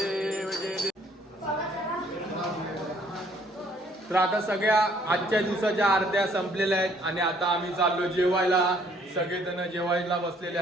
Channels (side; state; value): both; normal; correlation 0.63